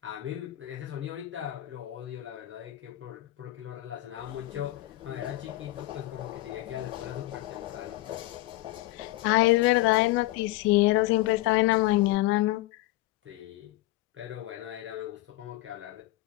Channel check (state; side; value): quieter; right; 17.3 dB